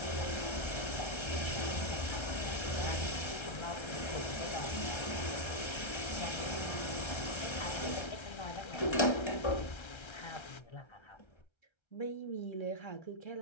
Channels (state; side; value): late; right; 1.3 ms